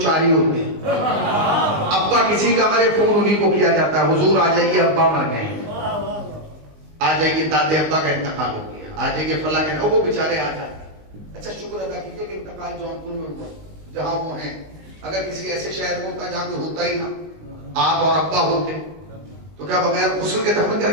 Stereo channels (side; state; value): left; late; 19 ms